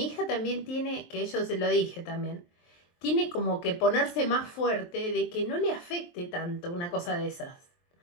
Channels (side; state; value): right; late; 23 ms